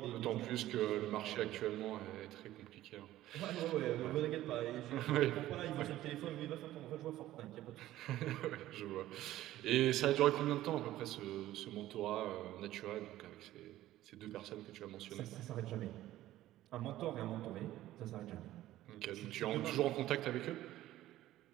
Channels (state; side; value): quieter; left; 14.7 dB